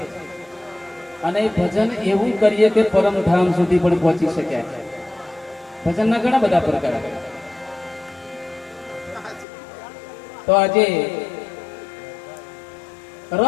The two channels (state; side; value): drops out; right; at 9.5 s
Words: અને ભજન એવું કરીએ કે પરમધામ સુધી પણ પહોંચી શક્યા. ભજનના ઘણા બધા પ્રકાર. તો આજે